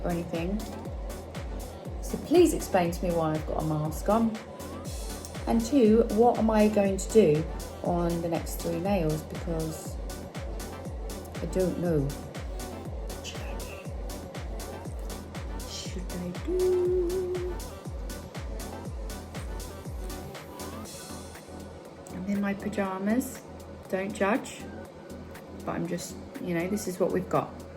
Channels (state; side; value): identical; both; correlation 1.00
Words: or anything. So please explain to me why I've got a mask on. And two, what am I going to do on the next 3 nails, because I don't know. What should I do? I'm in my pajamas, don't judge, but I'm just, you know, this is what we've got.